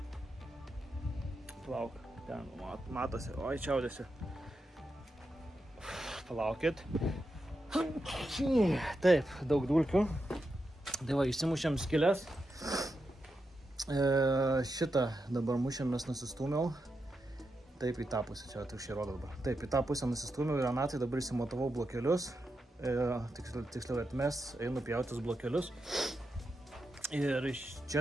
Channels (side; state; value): both; normal; correlation 0.86